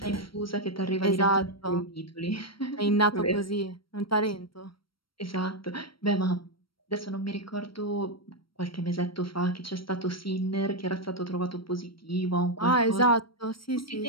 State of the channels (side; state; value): right; late; 0.74 ms